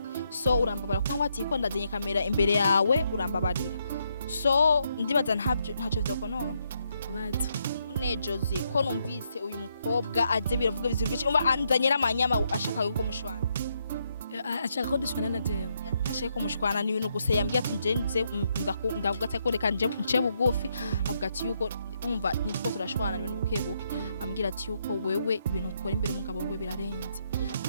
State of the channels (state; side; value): inverted; both; correlation -0.77